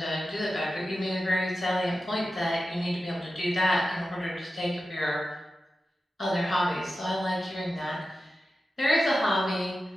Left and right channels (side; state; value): both; normal; correlation 0.92